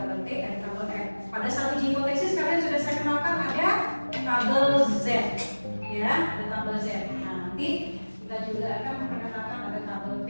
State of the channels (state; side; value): inverted; both; correlation -1.00